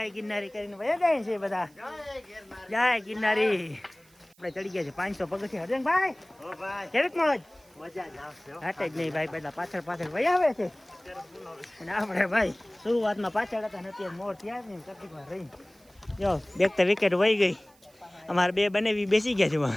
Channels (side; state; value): right; noise; hiss, 30 dB below the sound